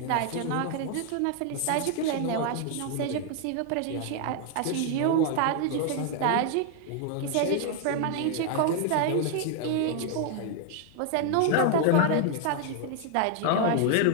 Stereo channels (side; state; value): both; different; correlation 0.00